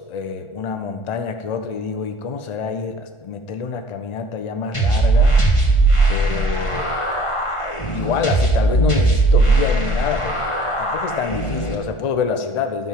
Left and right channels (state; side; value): late; right; 1.4 ms